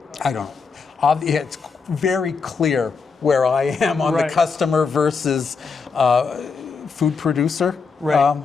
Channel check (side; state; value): right; quieter; 5.1 dB